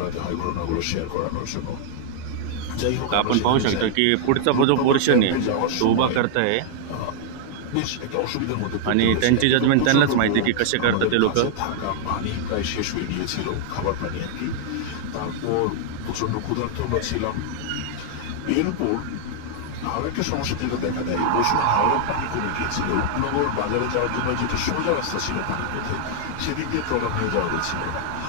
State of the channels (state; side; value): different; both; correlation -0.01